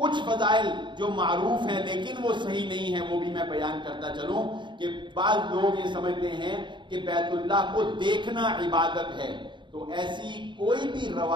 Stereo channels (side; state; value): left; late; 0.23 ms